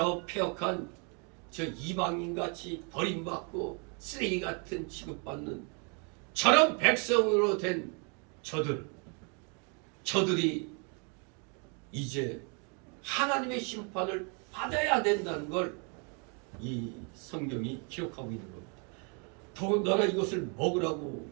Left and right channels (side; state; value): left; quieter; 36.0 dB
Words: 폐역한 저 이방인같이 버림받고 쓰레기 같은 취급받는 저런 백성으로 된 저들이 이제 하나님의 심판을 받아야 된다는 걸 이 성경이 기록하고 있는 겁니다. 더군다나 이것을 먹으라고